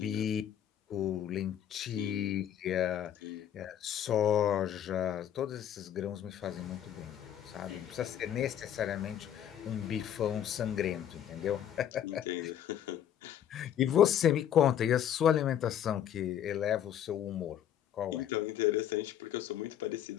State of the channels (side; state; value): right; quieter; 10.1 dB